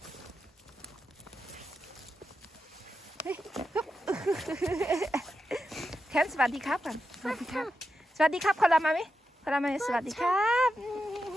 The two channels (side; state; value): both; normal; correlation 0.88